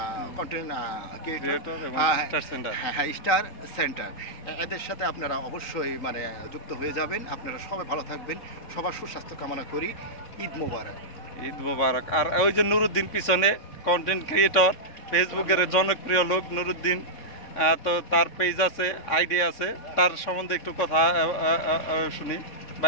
কন্টেন্ট ক্রিয়েটর, স্টার সেন্টার, এদের সাথে আপনারা অবশ্যই যুক্ত হয়ে যাবেন। আপনারা সবাই ভালো থাকবেন, সবার সুস্বাস্থ্য কামনা করি। ঈদ মোবারক। ঈদ মোবারক। আর ওই যে নুরুদ্দিন পিছনে কন্টেন্ট ক্রিয়েটর, ফেসবুকের জনপ্রিয় লোক নুরুদ্দিন, তো তার পেজ আছে, আইডি আছে, তার সম্বন্ধে একটু কথা শুনি।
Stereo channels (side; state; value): right; late; 3.6 ms